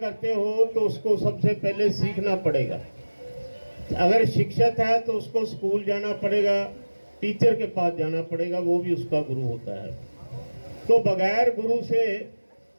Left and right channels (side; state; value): both; inverted; correlation -1.00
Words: हो तो उसको सबसे पहले सीखना पड़ेगा। अगर शिक्षक है तो उसको स्कूल जाना पड़ेगा, टीचर के पास जाना पड़ेगा, वो भी उसका गुरु होता है। तो बगैर गुरु से